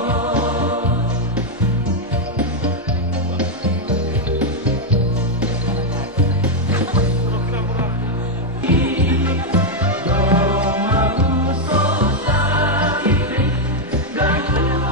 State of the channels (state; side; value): normal; both; correlation 0.00